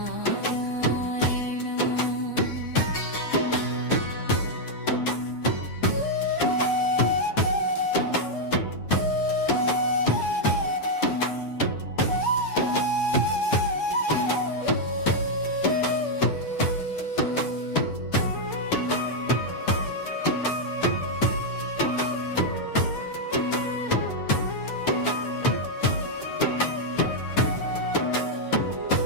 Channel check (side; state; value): right; late; 8.4 ms